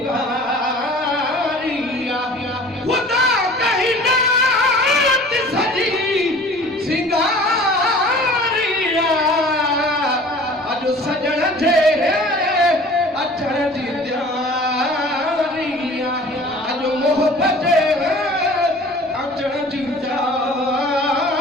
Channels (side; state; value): both; normal; correlation 0.46